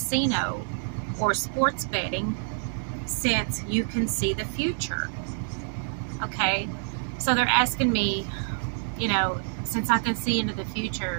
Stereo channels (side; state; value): left; silent; 60 dB below the other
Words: or sports betting since you can see the future? Okay, so they're asking me, since I can see into the